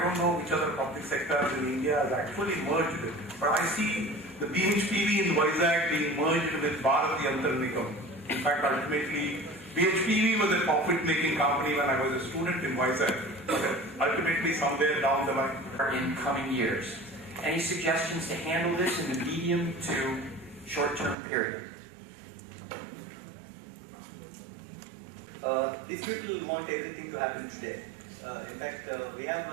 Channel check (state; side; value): drops out; left; at 21.2 s